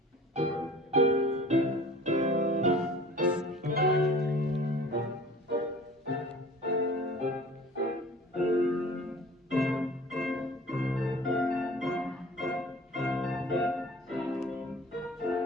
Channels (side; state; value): both; normal; correlation 0.45